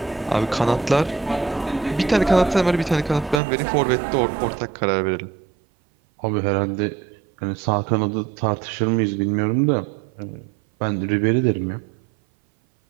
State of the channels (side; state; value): left; drops out; at 3.4 s